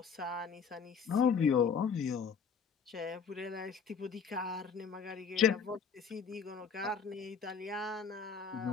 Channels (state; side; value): quieter; right; 6.1 dB